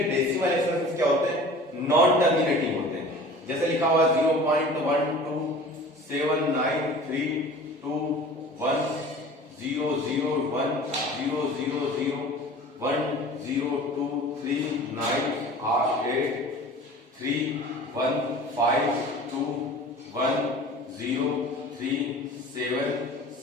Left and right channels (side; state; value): both; normal; correlation 0.42